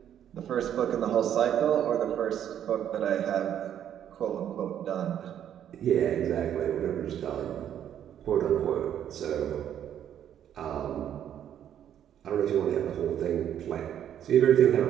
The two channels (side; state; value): left; quieter; 10.0 dB